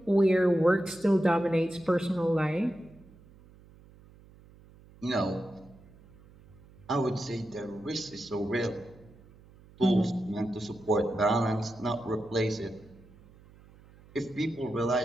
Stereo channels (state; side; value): noise; right; hum, 24 dB below the sound